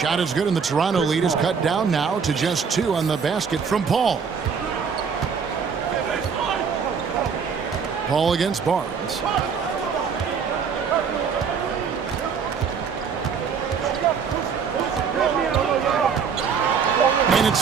is good, and the Toronto lead is cut down now to just 2 on the basket from Paul. Paul against Barnes. And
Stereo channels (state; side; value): quieter; left; 6.3 dB